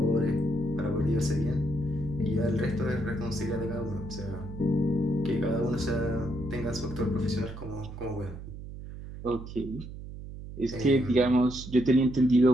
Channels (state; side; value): noise; right; hum, 11 dB below the sound